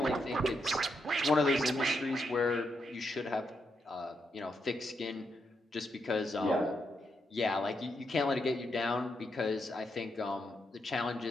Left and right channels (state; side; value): normal; both; correlation 0.81